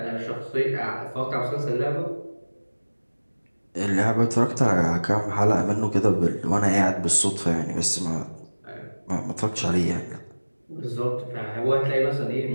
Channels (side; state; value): both; inverted; correlation -1.00